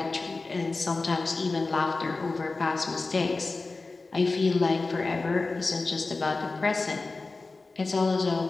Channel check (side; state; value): right; quieter; 3.6 dB